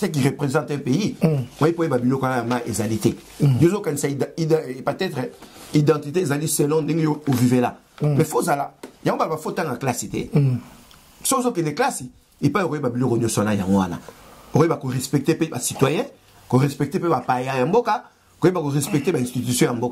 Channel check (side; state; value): both; identical; correlation 1.00